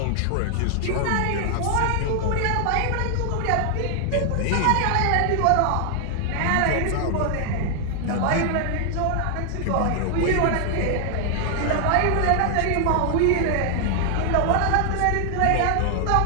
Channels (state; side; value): different; both; correlation 0.00